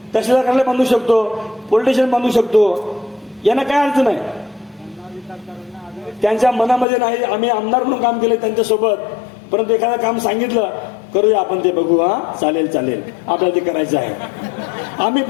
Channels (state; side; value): drops out; right; at 6.9 s